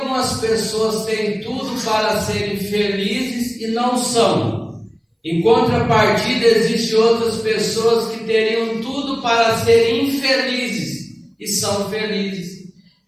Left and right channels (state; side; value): identical; both; correlation 1.00